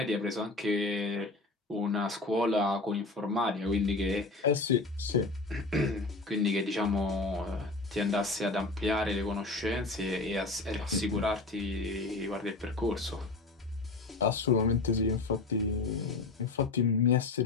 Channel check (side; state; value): right; quieter; 3.5 dB